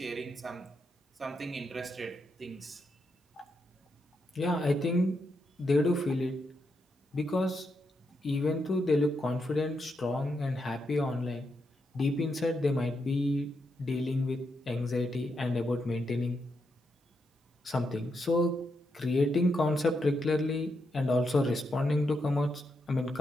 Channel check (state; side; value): normal; both; correlation 0.82